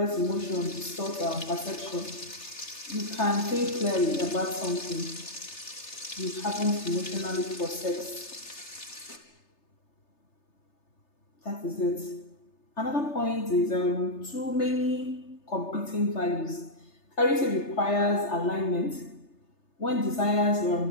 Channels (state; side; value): late; right; 3.3 ms